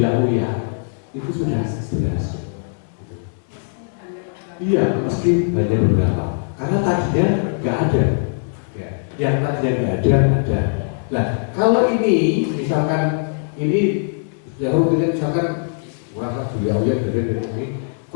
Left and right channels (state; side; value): silent; right; 65 dB below the other